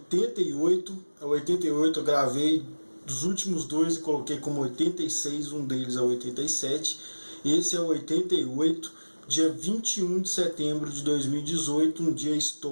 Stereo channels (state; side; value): inverted; both; correlation -1.00